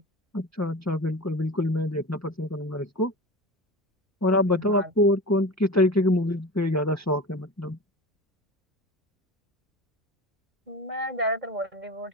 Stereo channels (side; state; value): both; normal; correlation 0.31